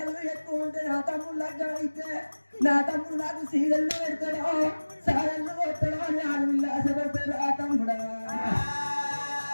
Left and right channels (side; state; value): both; inverted; correlation -1.00